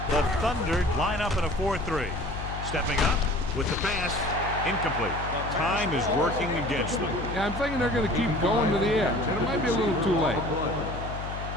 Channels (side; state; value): left; noise; hum, 7 dB below the sound